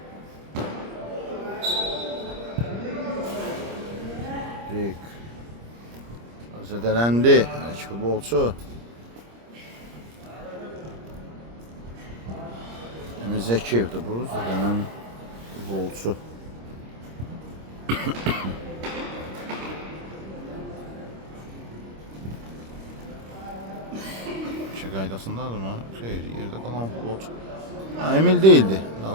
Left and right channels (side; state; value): left; late; 26 ms